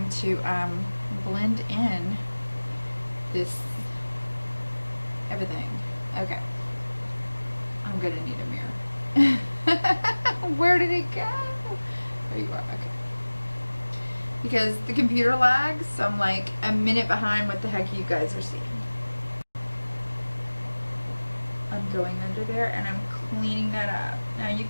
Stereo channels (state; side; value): inverted; both; correlation -1.00